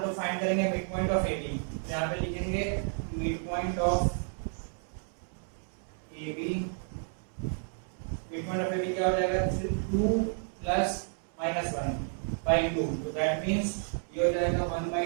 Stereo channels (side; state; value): left; silent; 57 dB below the other